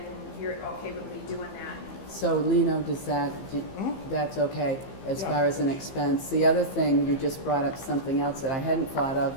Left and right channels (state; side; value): late; right; 15 ms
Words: you're okay with me doing that. So Lino, that's okay as far as an expense. The other thing, you just brought up something else that I hadn't thought